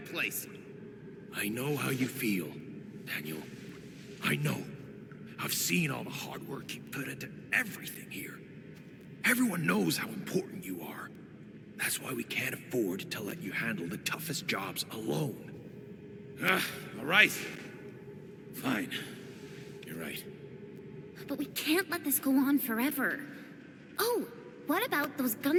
I know how you feel, Daniel. I know. I've seen all the hard work you put into everything here. Everyone knows how important you are. That's why we can't afford to let you handle the toughest jobs alone. All right. Fine. You're right. But we can't let this go on forever. Oh, what about those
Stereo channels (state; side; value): identical; both; correlation 1.00